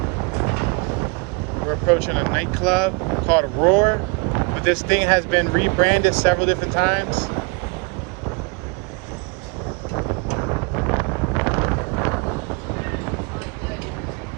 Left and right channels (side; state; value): left; quieter; 31.4 dB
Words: approaching a nightclub called Roar, but this thing has been rebranded several different times.